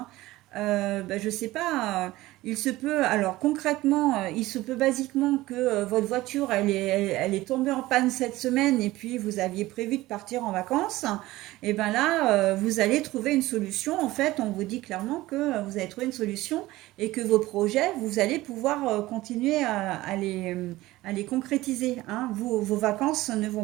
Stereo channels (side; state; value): left; quieter; 17.8 dB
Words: Je sais pas, il se peut, alors concrètement, il se peut basiquement que votre voiture, elle est tombée en panne cette semaine et puis vous aviez prévu de partir en vacances. Et ben là, vous allez trouver une solution. En fait, on vous dit clairement que vous allez trouver une solution et que vos projets, vous allez pouvoir continuer à les concrétiser, hein. Vos vacances ne vont